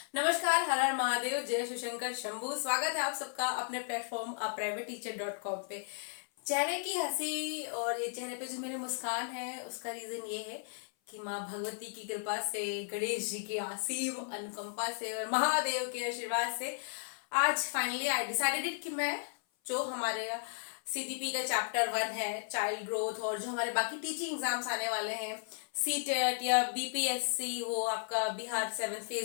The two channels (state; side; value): silent; right; 55 dB below the other